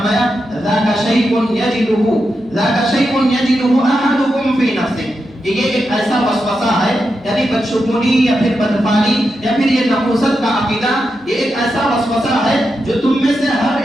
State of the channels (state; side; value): noise; left; hum, 29 dB below the sound